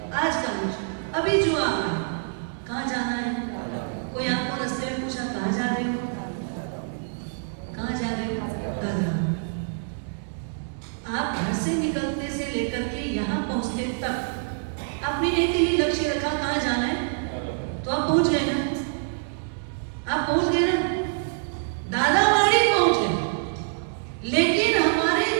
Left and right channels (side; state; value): left; silent; digital silence